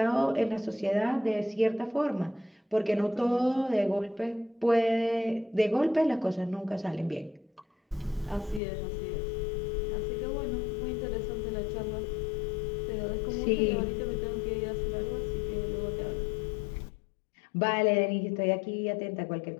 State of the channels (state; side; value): drops out; right; at 8.6 s